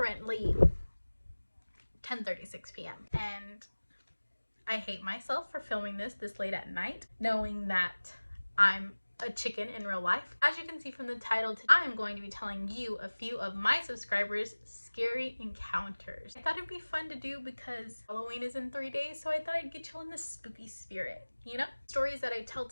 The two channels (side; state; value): both; inverted; correlation -1.00